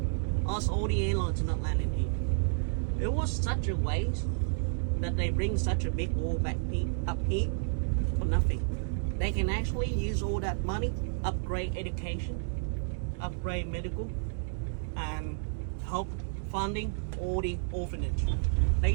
Ask all the airlines to not land in here. It was such a waste that they bring such a big war back up here for nothing. They can actually use all that money, upgrade education, upgrade medical, and help funding all the orphanage. They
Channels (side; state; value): left; silent; digital silence